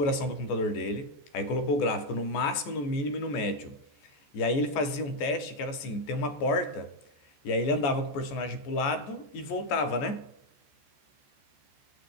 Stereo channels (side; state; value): right; late; 14 ms